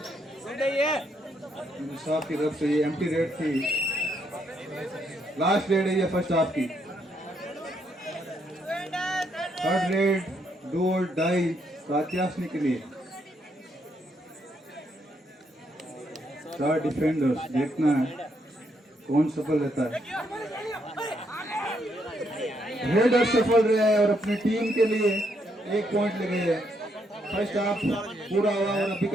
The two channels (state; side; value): normal; both; correlation 0.75